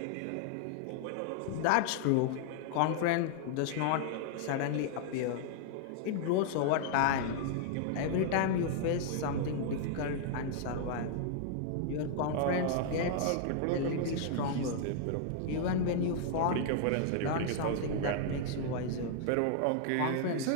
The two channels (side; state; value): both; different; correlation 0.00